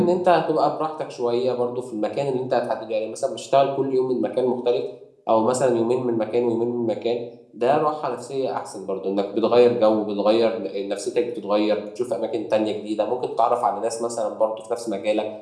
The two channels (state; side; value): identical; both; correlation 1.00